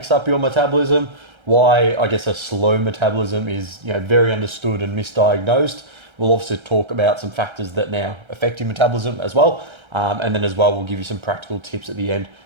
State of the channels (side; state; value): left; late; 1.3 ms